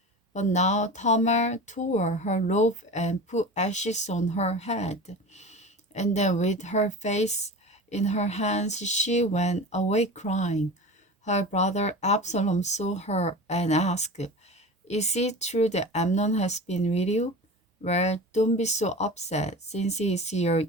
But now Tamar tore her robe and put ashes on her head. And then with her face in her hands, she went away crying. Her brother Absalom saw her and asked, "Is it true that Amnon has been with you?" "Well, don't be so upset, since he is your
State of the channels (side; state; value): both; normal; correlation 0.32